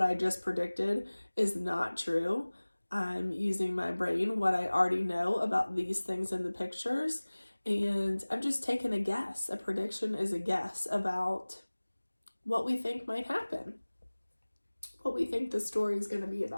I just predicted is not true. I'm using my brain, what I already know about these things in the pictures, and I'm just taking a guess. A prediction is a guess about what we think might happen, what we think the story is going to be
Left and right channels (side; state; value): both; inverted; correlation -1.00